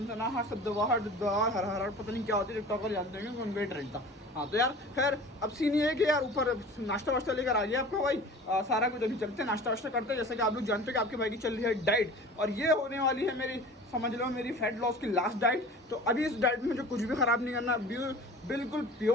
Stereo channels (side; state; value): both; normal; correlation 0.41